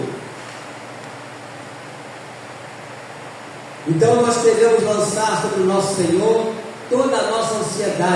Então nós devemos lançar sobre o nosso Senhor toda a nossa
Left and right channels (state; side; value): identical; both; correlation 1.00